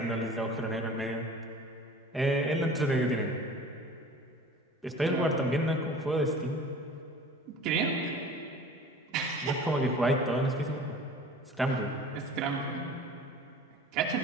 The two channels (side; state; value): both; normal; correlation 0.43